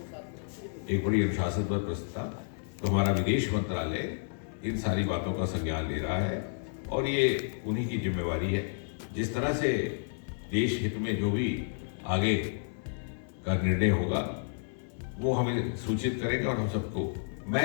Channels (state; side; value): silent; right; digital silence